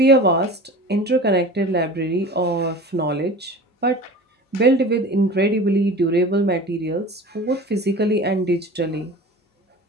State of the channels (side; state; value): both; normal; correlation 0.37